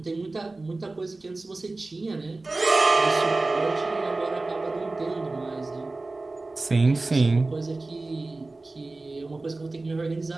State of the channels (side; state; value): left; quieter; 3.2 dB